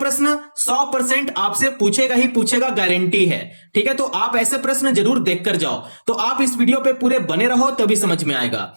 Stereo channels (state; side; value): inverted; both; correlation -1.00